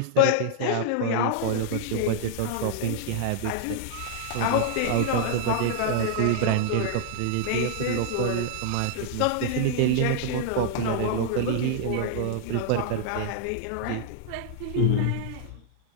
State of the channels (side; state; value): both; different; correlation -0.01